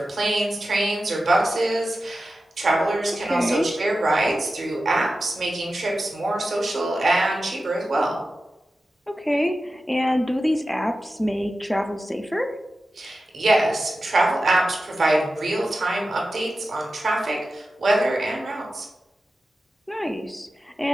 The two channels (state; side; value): normal; both; correlation 0.93